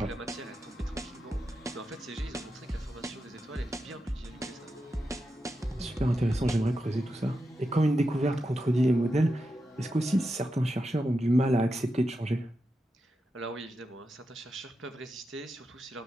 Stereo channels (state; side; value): normal; both; correlation 0.88